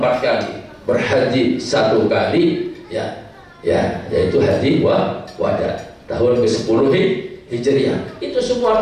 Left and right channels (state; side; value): identical; both; correlation 1.00